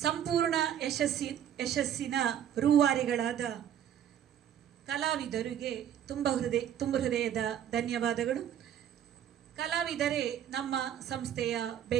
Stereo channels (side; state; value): left; quieter; 9.9 dB